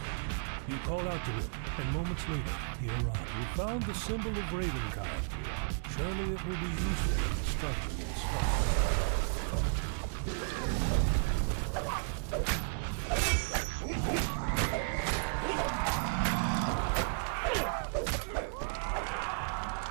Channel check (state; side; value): silent; left; digital silence